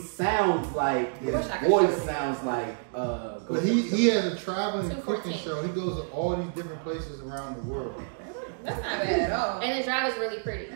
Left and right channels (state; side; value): silent; left; digital silence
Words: like his wish I could voice show you. sounds like But he has a traveling cooking 214. show. He goes to all these different places around the world. That's not bad at all. And the drive is really pretty.